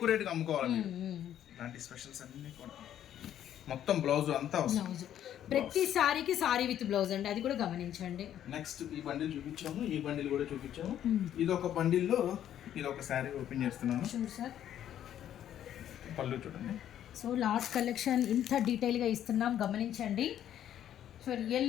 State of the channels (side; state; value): right; quieter; 10.8 dB